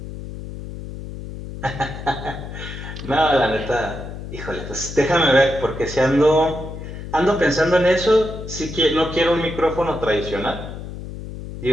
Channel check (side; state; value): left; noise; hum, 10 dB below the sound